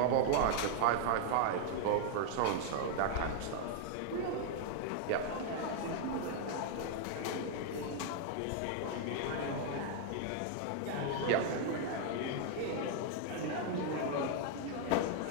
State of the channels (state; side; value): different; both; correlation 0.00